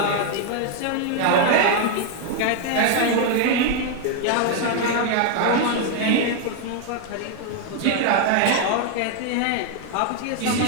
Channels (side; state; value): both; different; correlation 0.01